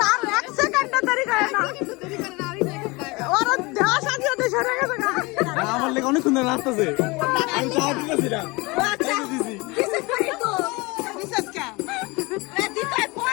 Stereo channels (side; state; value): right; quieter; 25.1 dB